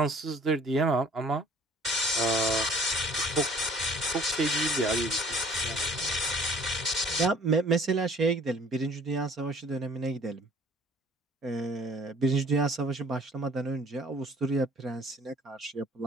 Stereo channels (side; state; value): both; normal; correlation 0.53